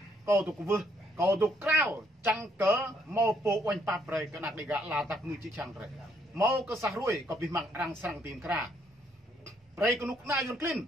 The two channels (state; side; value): normal; both; correlation 0.70